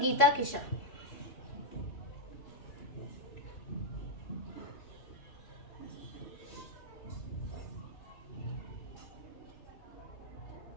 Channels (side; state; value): right; late; 3.0 ms